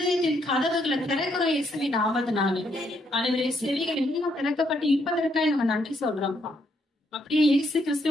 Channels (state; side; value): normal; both; correlation 0.74